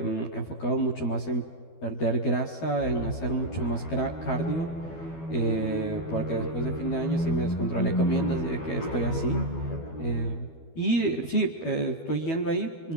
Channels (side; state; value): right; late; 12 ms